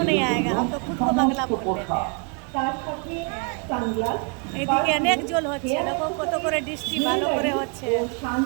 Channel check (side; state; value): left; quieter; 36.6 dB